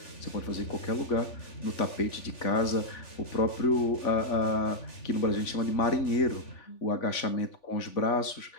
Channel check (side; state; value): right; late; 3.5 ms